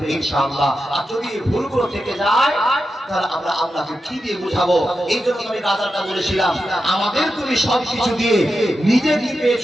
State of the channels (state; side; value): normal; both; correlation 0.89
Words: ইনশাআল্লাহ। আর যদি ভুলগুলো থেকে যায় তাহলে আমরা আল্লাহকে কি দিয়ে বুঝাবো? এই জন্য আমি গাজারটা বলেছিলাম, আমাদের তুমি সবকিছু দিয়ে নিজে কি